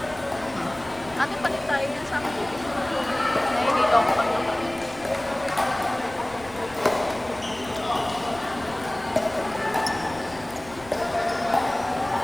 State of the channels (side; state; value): left; noise; rumble, 20 dB below the sound